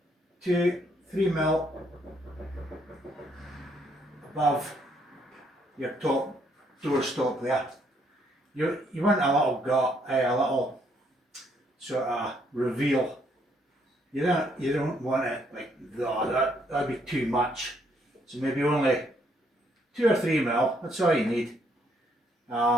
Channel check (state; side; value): normal; both; correlation 0.70